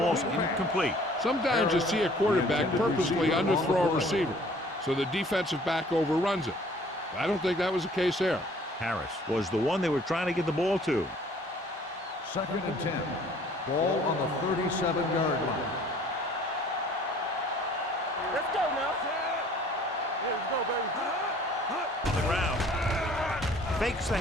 incomplete. Sometimes you see a quarterback purposely underthrow a receiver, so the defensive back overruns it. I don't think that was the case there. Harris was the one they were trying to get the ball to. Second and 10. Ball on the 37-yard line. Let's go now. Let's go, baby. On the ground. Fakes the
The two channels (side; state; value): both; normal; correlation 0.54